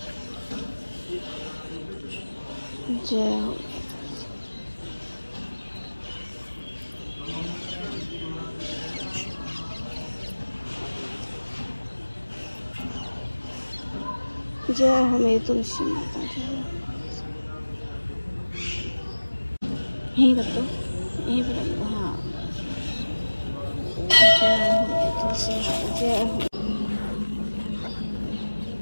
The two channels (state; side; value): inverted; both; correlation -1.00